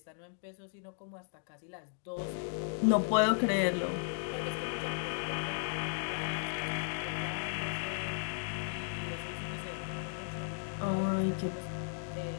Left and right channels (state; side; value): silent; right; digital silence